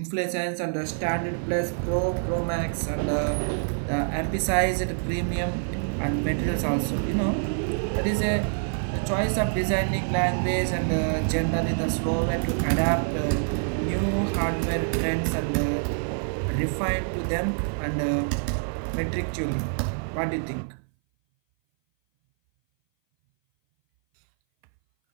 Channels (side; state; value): left; silent; 58 dB below the other